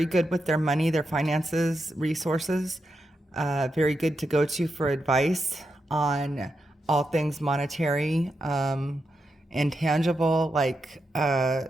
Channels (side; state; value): both; normal; correlation 0.86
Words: good with their money, their finances, resources, very good to go to for advice on all things monetary, intangible, like